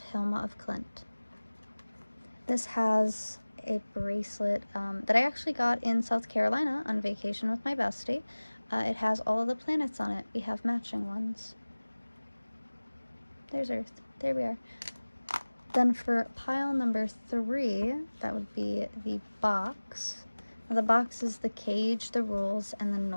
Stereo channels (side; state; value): both; inverted; correlation -1.00